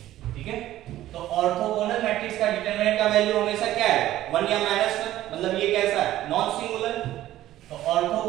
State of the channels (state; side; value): quieter; left; 14.1 dB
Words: ठीक है। तो ऑर्थोगोनल मैट्रिक्स का डिटरमिनेंट का वैल्यू हमेशा क्या है? 1 या -1, मतलब ये कैसा है? Non singular. तो